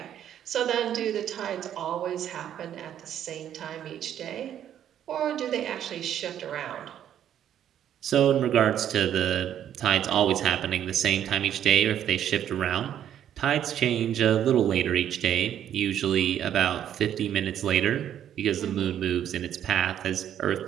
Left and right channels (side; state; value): left; quieter; 10.3 dB